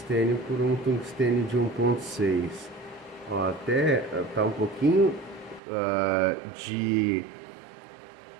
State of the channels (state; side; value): drops out; left; at 5.6 s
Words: por um tungstênio de 1.6. Ó, até tá um pouquinho de